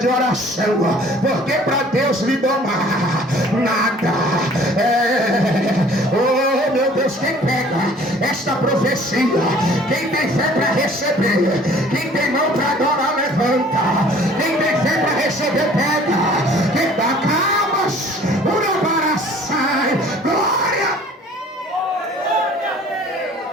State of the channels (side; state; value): both; normal; correlation 0.52